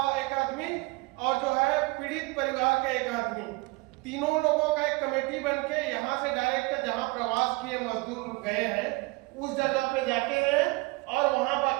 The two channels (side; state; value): left; quieter; 24.9 dB